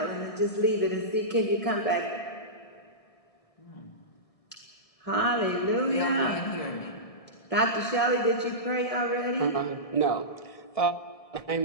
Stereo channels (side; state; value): right; late; 1.7 ms